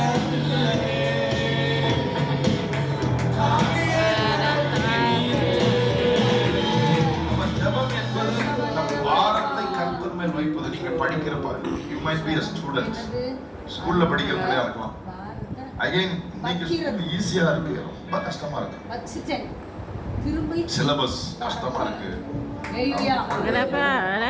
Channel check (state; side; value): identical; both; correlation 1.00